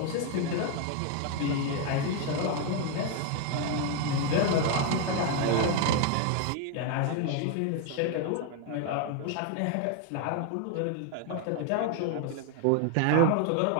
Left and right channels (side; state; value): both; different; correlation 0.01